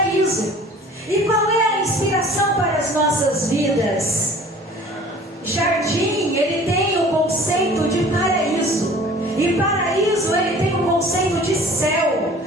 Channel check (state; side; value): normal; both; correlation 0.47